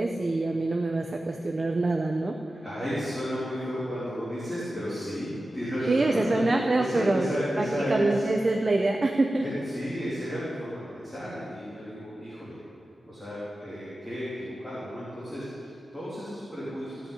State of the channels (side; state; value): both; normal; correlation 0.94